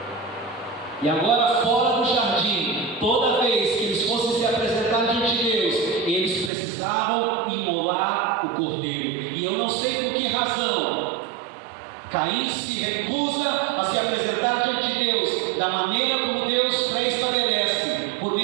E agora, fora do jardim, toda vez que eles fossem se apresentar diante de Deus, eles precisavam imolar o cordeiro. E eu não sei por que razão Caim se recusa a se apresentar diante de Deus da maneira como Deus pré-estabelece, por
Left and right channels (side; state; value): left; drops out; at 6.5 s